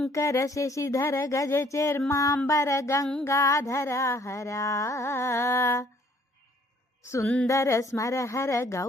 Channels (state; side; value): normal; both; correlation 0.61